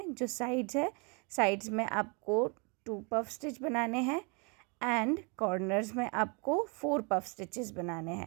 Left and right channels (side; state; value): left; quieter; 33.2 dB